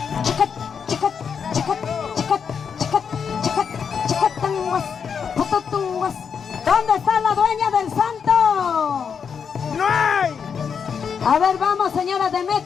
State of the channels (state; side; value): quieter; right; 6.7 dB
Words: Chicat, chicat, chicat, chicat, chicat, chicat, chicatanguas, pututunguas. ¿Dónde está la dueña del santo? ¡No hay! A ver, vamos, señora